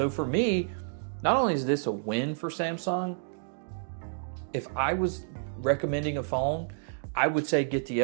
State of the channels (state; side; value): silent; left; digital silence